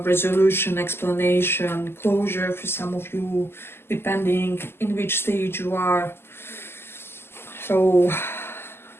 explanation, closure for some of you, depending in which stage you are. So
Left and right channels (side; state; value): right; late; 0.12 ms